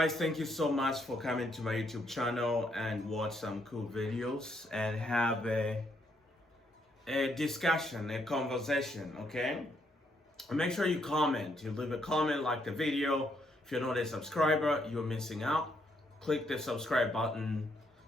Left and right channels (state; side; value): normal; both; correlation 0.74